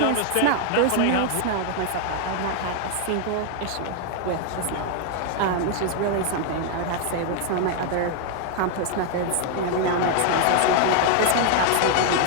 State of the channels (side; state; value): both; different; correlation 0.00